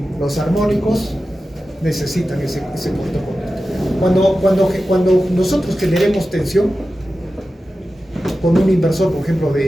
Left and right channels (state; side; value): normal; both; correlation 0.93